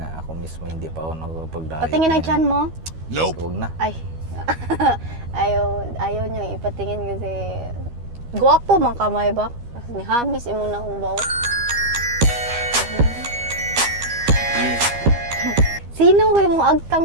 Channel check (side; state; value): left; late; 12 ms